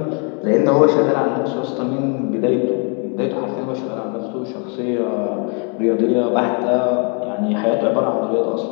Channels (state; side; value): quieter; right; 37.8 dB